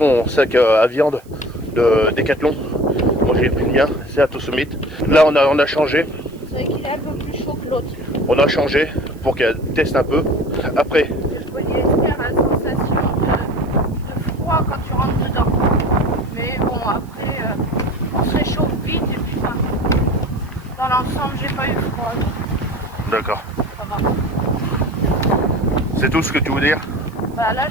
sac à viande de Decathlon. Moi j'ai pris le mien, c'est Atosummit. Là on a changé. C'est vrai qu'il est un peu plus chaud que l'autre. On a changé pour qu'elle teste un peu. Après. Le polyester a la sensation de froid quand tu rentres dedans. Mais bon, après, on se réchauffe vite et puis ça. Dans l'ensemble, j'ai pas eu froid. D'accord. Ça va. C'est tout ce que tu veux dire? Bah là,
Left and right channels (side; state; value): right; noise; hiss, 29 dB below the sound